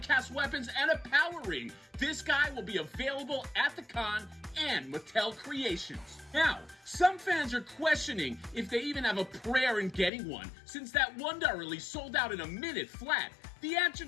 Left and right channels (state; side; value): drops out; right; at 10.1 s